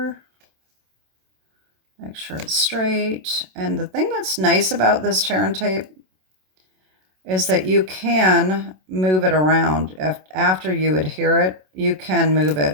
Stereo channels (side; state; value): left; late; 27 ms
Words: Make sure it's straight. And the thing that's nice about this tear and tape is that you can move it around. After you adhere it, you can move